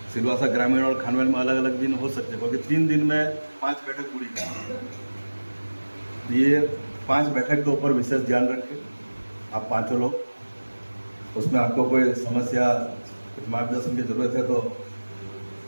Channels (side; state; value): both; inverted; correlation -1.00